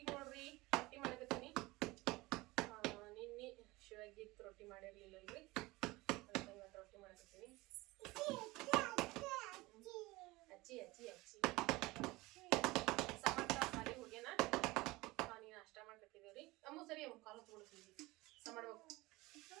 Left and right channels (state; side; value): quieter; left; 21.1 dB